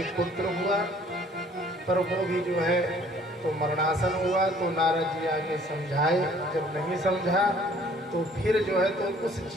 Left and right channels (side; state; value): both; normal; correlation 0.56